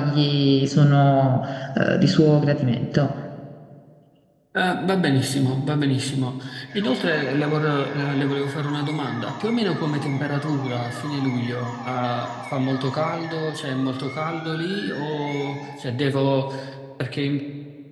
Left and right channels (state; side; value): identical; both; correlation 1.00